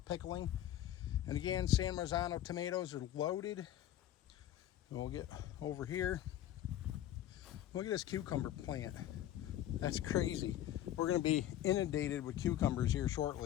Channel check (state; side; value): quieter; right; 12.4 dB